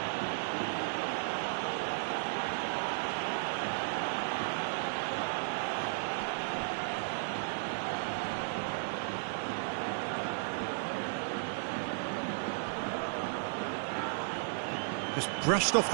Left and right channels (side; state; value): left; silent; digital silence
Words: Just brushed off